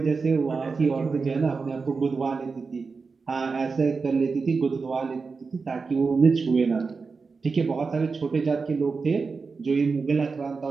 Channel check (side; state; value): left; quieter; 4.7 dB